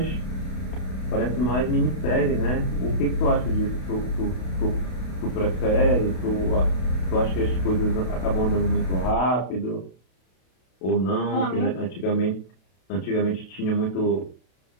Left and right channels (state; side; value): late; right; 32 ms